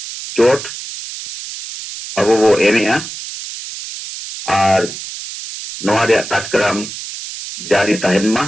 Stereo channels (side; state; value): right; noise; hiss, 10 dB below the sound